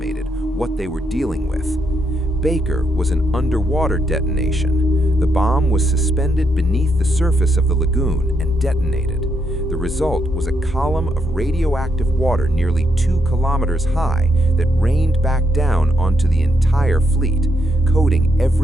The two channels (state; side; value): normal; both; correlation 0.78